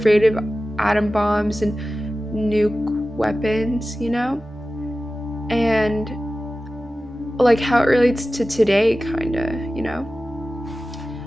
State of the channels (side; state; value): both; normal; correlation 0.95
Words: of atom bombs and nuke weapons? And like how it relates to today, kind of.